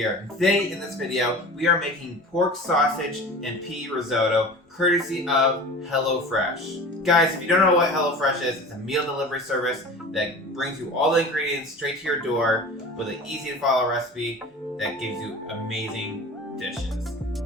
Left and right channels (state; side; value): normal; both; correlation 0.37